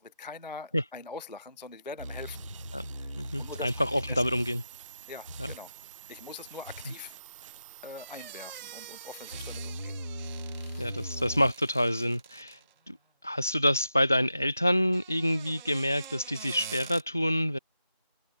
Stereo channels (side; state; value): both; inverted; correlation -0.89